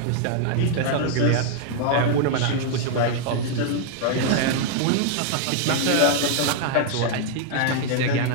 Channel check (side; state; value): both; different; correlation 0.00